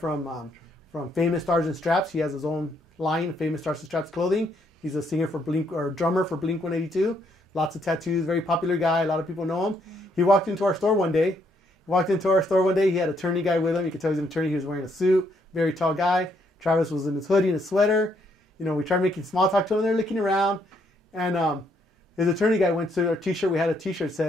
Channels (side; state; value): both; normal; correlation 0.72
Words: Famous Stars and Straps. He has his own line, Famous Stars and Straps clothing. He's a singer for drummer for Blink 182. Lots of tattoos, very popular guy. A lot of people know him. He walked into our store one day. He had an attorney guy with him. You could tell he's an attorney. He was wearing a suit, very tall guy. Travis was in his hoodie and his sweater. We tried making small talk to him. They're looking around. And his attorney guy went to our t-shirt. We had a t-shirt that